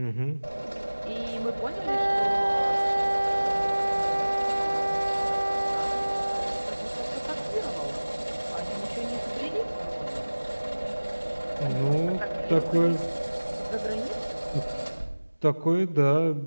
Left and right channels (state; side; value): inverted; both; correlation -1.00